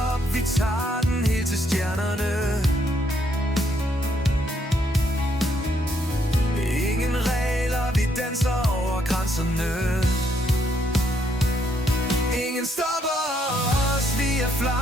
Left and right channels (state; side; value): normal; both; correlation 0.72